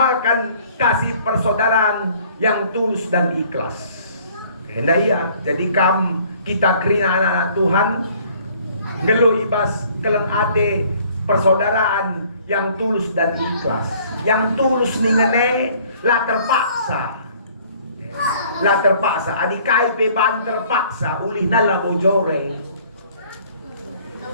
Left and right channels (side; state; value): both; inverted; correlation -0.57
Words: kasih persaudaraan yang tulus dan ikhlas. Hendak iya. Jadi kita kerina anak-anak Tuhan ngelu ibas kelengate persaudaraan yang tulus dan ikhlas. Yang tulus ningene lah terpaksa. Lah terpaksa. Adikai beban terpaksa. Ulih nala bojore.